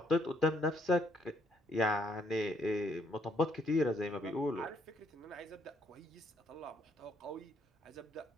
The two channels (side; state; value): both; normal; correlation 0.70